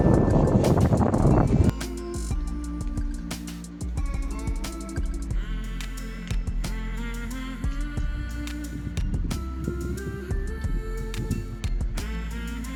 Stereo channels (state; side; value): identical; both; correlation 1.00